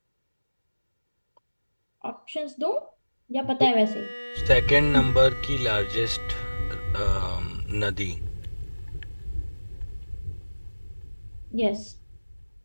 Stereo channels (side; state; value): both; inverted; correlation -1.00